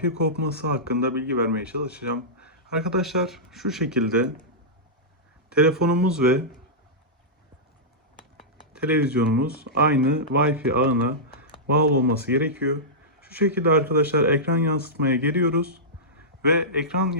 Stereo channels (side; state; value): both; normal; correlation -0.14